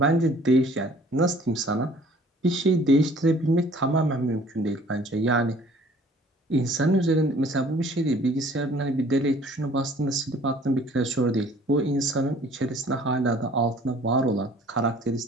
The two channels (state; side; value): normal; both; correlation 0.54